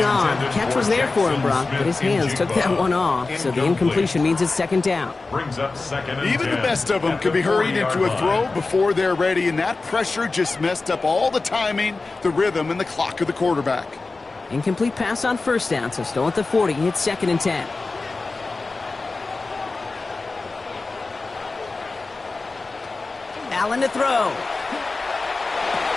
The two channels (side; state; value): right; quieter; 3.7 dB